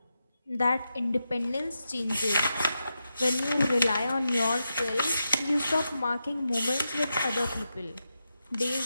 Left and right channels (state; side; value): inverted; both; correlation -0.88